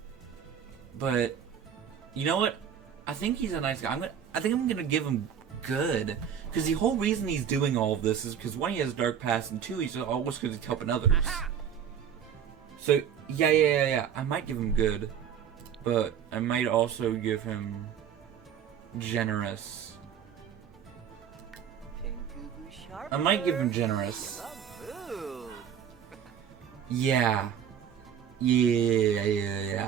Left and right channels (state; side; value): quieter; left; 8.4 dB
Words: but you know what? I think he's a nice guy. I think I'm gonna give him good, because the whole reason he's doing all of this is because one, he has a dark past, and two, he's always because he's helping others. So yeah. I might give him good, but I might also give him generous. I might give him generous. Yeah.